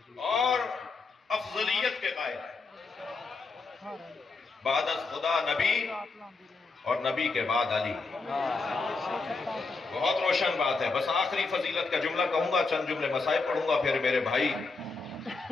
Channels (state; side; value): quieter; right; 4.1 dB